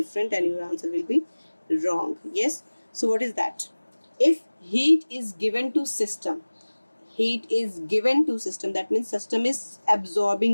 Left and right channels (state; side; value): inverted; both; correlation -1.00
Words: and your answer will be wrong. Yes. So what is that? If heat is given to system, that means system is